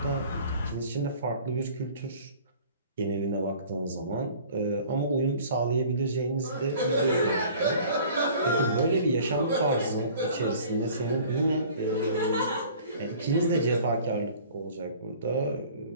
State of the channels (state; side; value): inverted; both; correlation -0.48